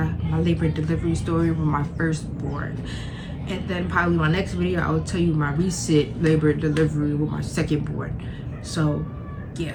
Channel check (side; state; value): both; identical; correlation 1.00